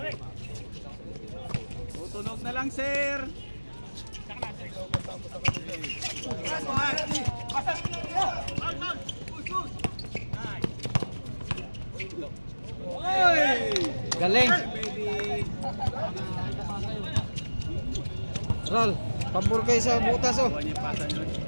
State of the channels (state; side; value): inverted; both; correlation -1.00